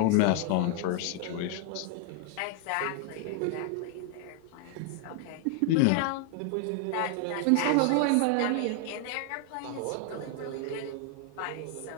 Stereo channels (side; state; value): both; different; correlation 0.00